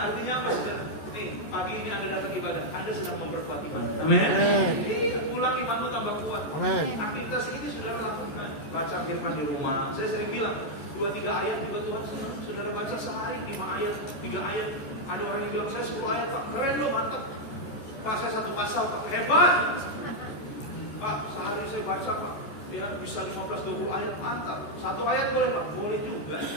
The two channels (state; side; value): late; right; 14 ms